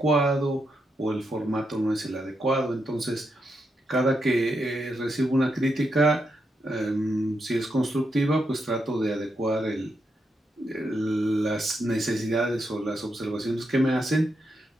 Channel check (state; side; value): normal; both; correlation 0.83